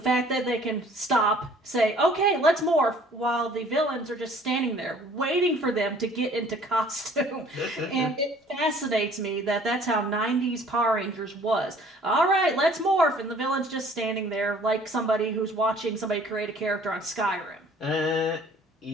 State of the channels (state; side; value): normal; both; correlation 0.54